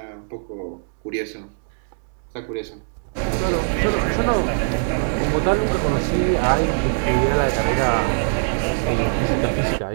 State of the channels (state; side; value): silent; left; digital silence